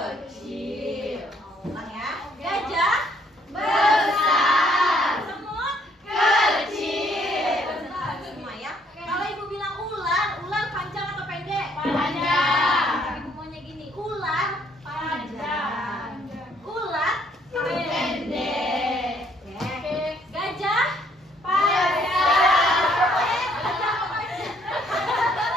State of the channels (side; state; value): both; normal; correlation 0.66